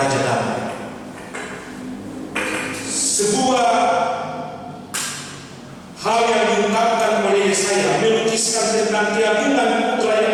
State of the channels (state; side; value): identical; both; correlation 1.00